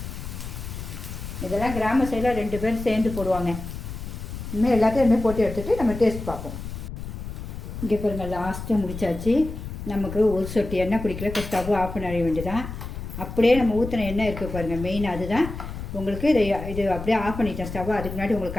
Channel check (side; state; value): left; noise; rumble, 8 dB below the sound